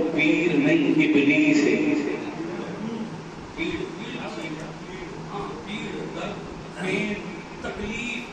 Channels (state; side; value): identical; both; correlation 1.00